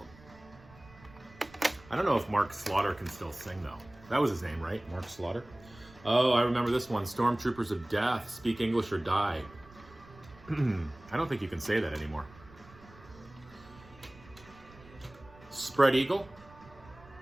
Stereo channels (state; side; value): noise; right; rumble, 22 dB below the sound